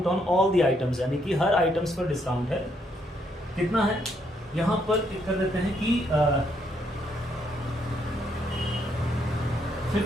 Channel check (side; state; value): both; normal; correlation 0.73